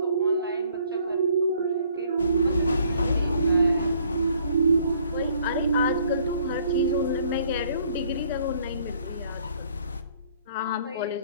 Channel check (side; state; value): both; inverted; correlation -0.61